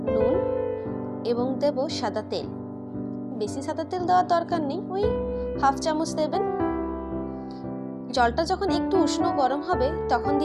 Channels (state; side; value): identical; both; correlation 1.00